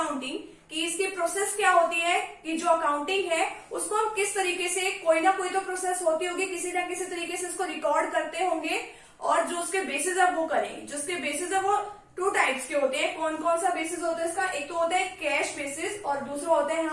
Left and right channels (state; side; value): identical; both; correlation 1.00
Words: कि इसकी प्रोसेस क्या होती है, कि जो अकाउंटिंग है उसको हम किस तरीके से, कोई ना कोई तो प्रोसेस होती होगी, किसी ना किसी तरीके से उसको रिकॉर्ड करते होंगे और जो उसके बेसिस है वो करेंगे। जो उसके बेसिस है वो 2 टाइप्स के होते हैं। कौन कौन सा बेसिस होता है इसका? एक तो होता है कैश बेसिस और दूसरा होता है